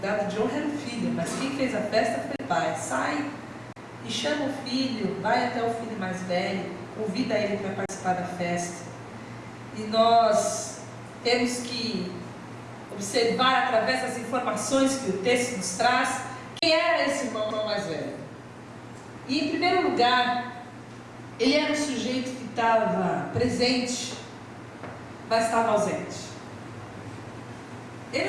de honra era o filho, mas quem fez a festa foi o pai. Sai e chama o filho, vai até o filho mais velho, convida ele para participar da festa. E nós temos que observar através das informações que o texto nos traz, quem era esse irmão mais velho. E em primeiro lugar, ele era um sujeito que estava presente, mas estava ausente. Ele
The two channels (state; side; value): identical; both; correlation 1.00